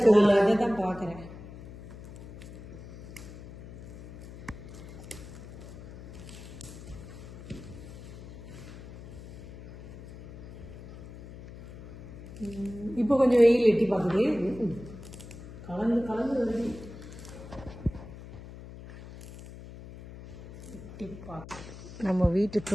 அதை தான் பாக்குறேன். இப்போ கொஞ்சம் வெயில் எட்டி பார்க்குது. கலந்து கலந்து வருது. எட்டி பார்க்க நம்ம வீட்டு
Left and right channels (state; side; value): noise; left; hum, 14 dB below the sound